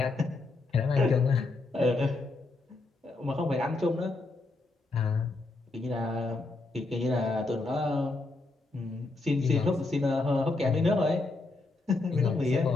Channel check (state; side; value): quieter; right; 3.3 dB